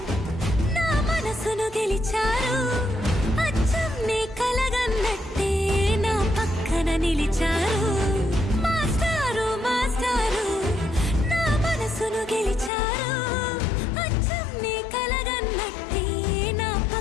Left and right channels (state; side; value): drops out; right; at 12.7 s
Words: నా మనసును గెలిచారు, అచ్చం నీ కలగన్నట్టే నా పక్కన నిలిచారు. మాస్టారు మాస్టారు నా మనసును గెలిచారు, అచ్చం నీ కలగన్నట్టే నా